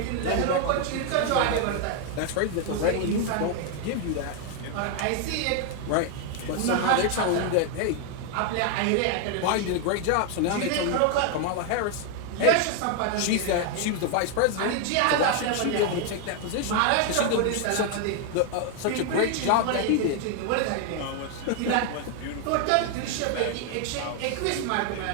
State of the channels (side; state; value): both; different; correlation 0.01